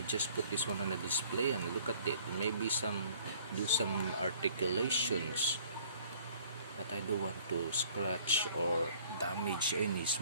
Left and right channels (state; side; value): inverted; both; correlation -0.55